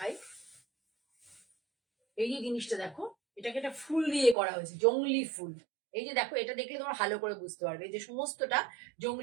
এই যে জিনিসটা দেখো, এটাকে একটা ফুল দিয়ে করা হয়েছে, জংলি ফুল। এই যে দেখো, এটা দেখলে তোমার ভালো করে বুঝতে পারবে যে সমস্তটা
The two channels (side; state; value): left; drops out; at 4.4 s